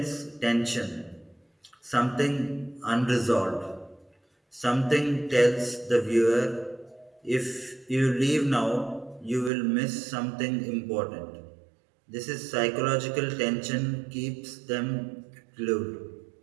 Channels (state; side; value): drops out; left; at 9.5 s